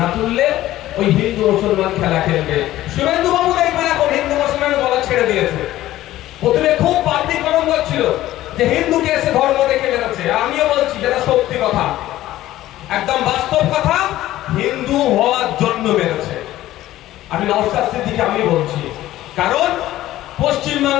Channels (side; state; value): right; quieter; 14.8 dB